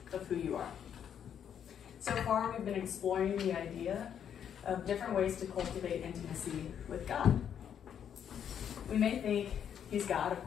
of who you are. So far, we've been exploring the idea of different ways to cultivate intimacy with God. We may think he's God, of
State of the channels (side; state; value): right; quieter; 8.7 dB